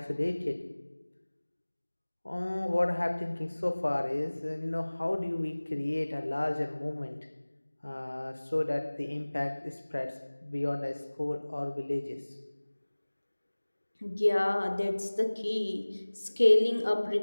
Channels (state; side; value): inverted; both; correlation -1.00